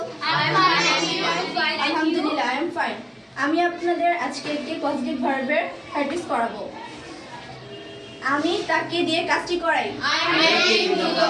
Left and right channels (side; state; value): both; identical; correlation 1.00